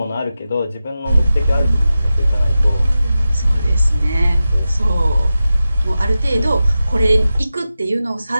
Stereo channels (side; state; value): both; inverted; correlation -0.93